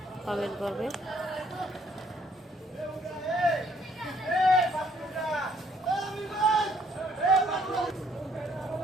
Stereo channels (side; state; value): both; normal; correlation 0.65